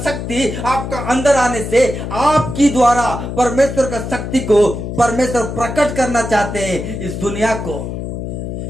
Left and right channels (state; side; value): noise; left; hum, 6 dB below the sound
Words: शक्ति आपका अंदर आने से आपकी द्वारा परमेश्वर का शक्ति को परमेश्वर प्रकट करना चाहते हैं इस दुनिया को,